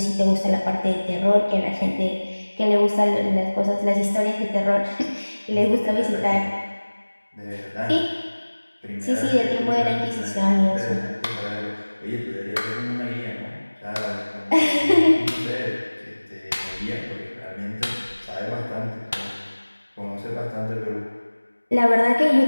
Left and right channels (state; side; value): inverted; both; correlation -1.00